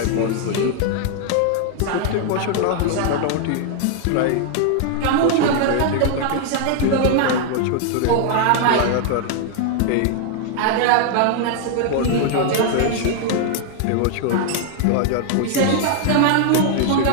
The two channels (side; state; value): both; different; correlation 0.00